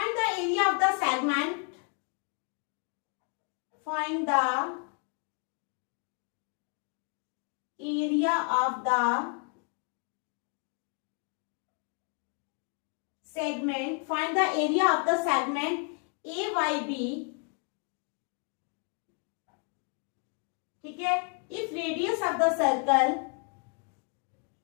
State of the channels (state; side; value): quieter; right; 38.8 dB